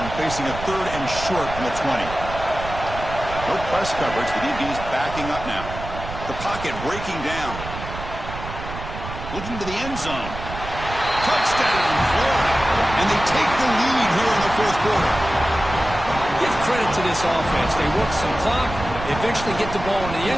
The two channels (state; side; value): noise; right; rumble, 10 dB below the sound